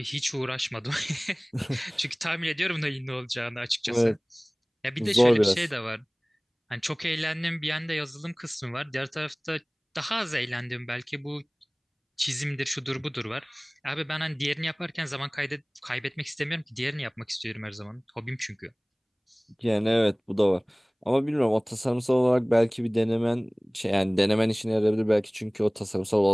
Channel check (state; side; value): identical; both; correlation 1.00